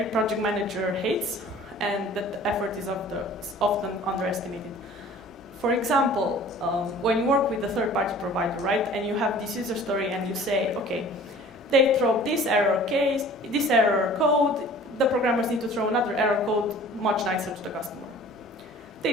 project manager hates, and that the effort is often underestimated. For example, when you work with a third-party provider, right, and you have this user story and you say, okay, they throw this error case, this error code, the programmers need to throw another error code much nicer to the customer.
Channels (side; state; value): both; normal; correlation 0.47